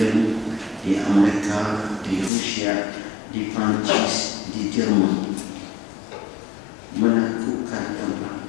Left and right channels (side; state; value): right; drops out; at 2.3 s